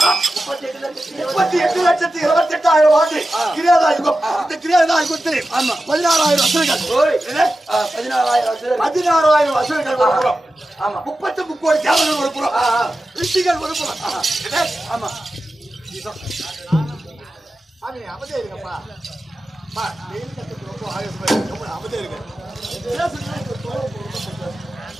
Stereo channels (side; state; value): both; normal; correlation 0.93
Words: 38,28,000 ஆண்டு கிரியாதா யுகம் இந்த கிரியாதா யுகத்தில் 16,000 அசுரர்கள் 16,000 அசுரர்கள் ஒரு புறம் 33 கோடி தேவர்கள் ஒரு புறம் ரிஷிகள் ஒரு புறம் ஆமா சாமி அமைதியா இருக்கப்பா. வெயில் கத்துக்கு ரொம்ப ஆயுசமா இருக்கு. ரொம்ப அமைதியா இருக்கு.